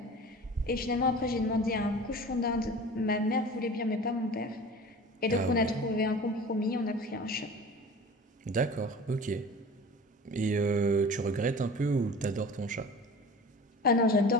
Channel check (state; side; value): normal; both; correlation 0.39